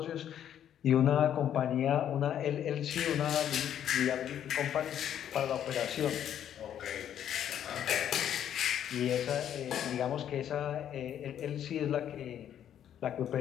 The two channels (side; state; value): right; quieter; 10.1 dB